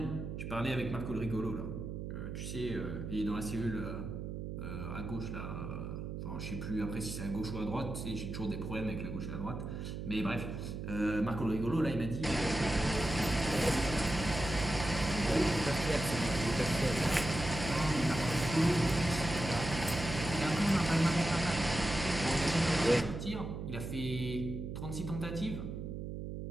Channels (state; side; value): noise; right; hum, 6 dB below the sound